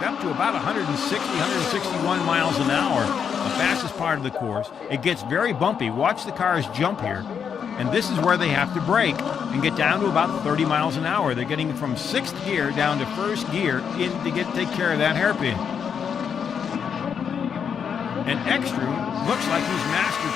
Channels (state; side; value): quieter; right; 7.2 dB